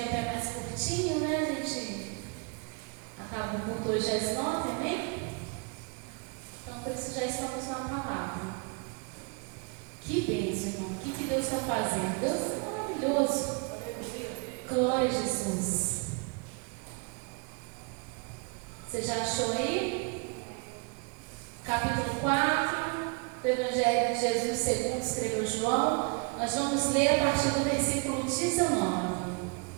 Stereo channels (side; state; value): left; quieter; 32.2 dB